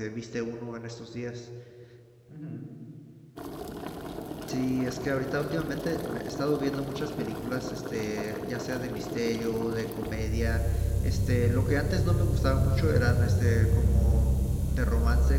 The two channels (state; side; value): identical; both; correlation 1.00